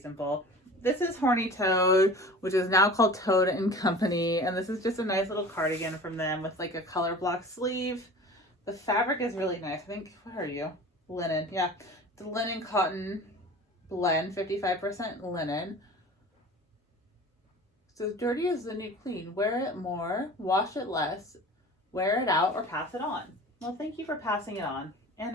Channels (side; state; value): both; normal; correlation 0.39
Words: This is Horny Toad, which is now called Toad and Company, and this is just a nice little cardigan from them with like a color block sleeve. The fabric is really nice. I think, what are you? Linen, yeah. It's a linen cotton blend, 55% linen. So dirty is the new clean. Wear it more, wash it less, wear it out, or pass it on. Well, thank you for passing it on.